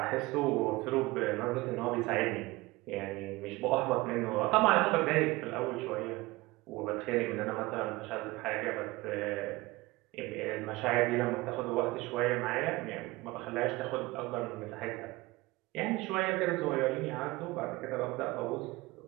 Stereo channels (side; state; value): left; quieter; 21.1 dB